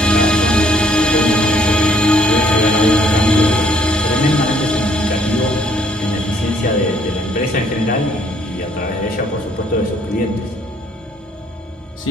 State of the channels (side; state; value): both; normal; correlation 0.65